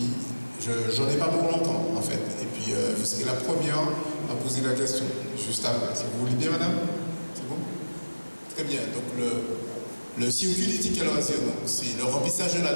j'en ai pas pour longtemps, en fait. Et puis, vous serez la première à poser la question, juste après. Si vous voulez bien, madame? C'est bon? Très bien. Donc, le circuit du ticket loisir, c'est le remplissage de la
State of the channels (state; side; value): inverted; both; correlation -1.00